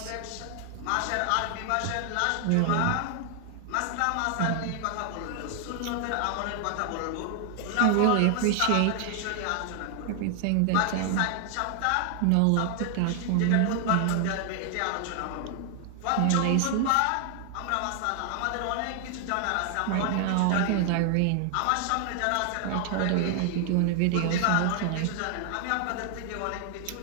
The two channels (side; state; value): both; different; correlation 0.00